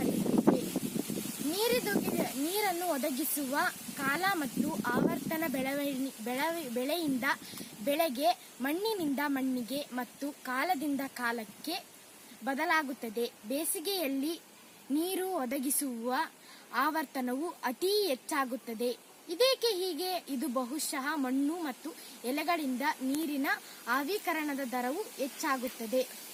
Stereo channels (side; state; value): both; identical; correlation 1.00